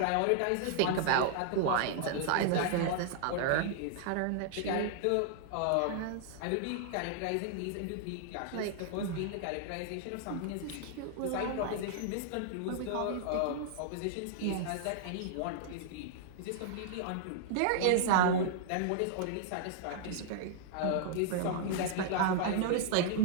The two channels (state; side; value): different; both; correlation -0.01